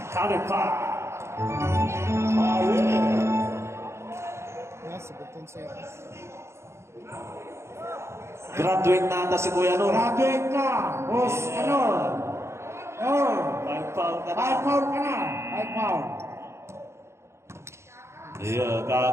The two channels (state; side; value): late; left; 0.13 ms